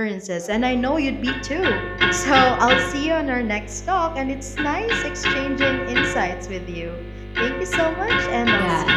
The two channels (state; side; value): identical; both; correlation 1.00